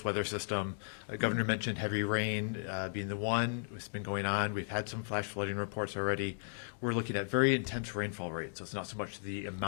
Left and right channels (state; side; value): silent; right; digital silence